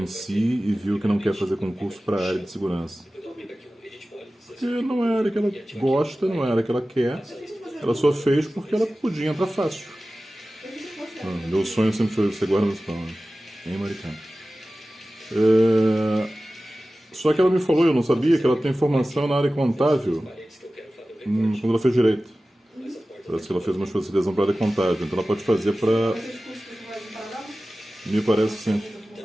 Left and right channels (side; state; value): both; normal; correlation 0.96